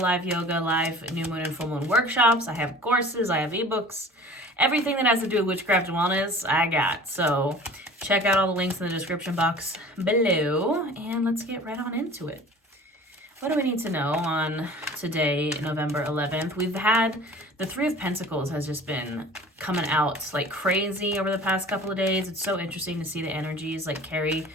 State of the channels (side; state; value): both; normal; correlation 0.44